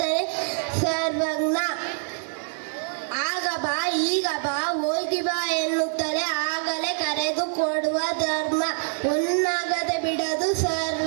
ಸರ್ವಜ್ಞ. ಆಗ ಬಾ, ಈಗ ಬಾ, ಹೋಗಿ ಬಾ ಎನ್ನುತ್ತಲೇ ಆಗಲೇ ಕರೆದು ಕೊಡುವ ಧರ್ಮ. ಉನ್ನಗದೆ ಬಿಡದು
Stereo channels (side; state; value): left; silent; 62 dB below the other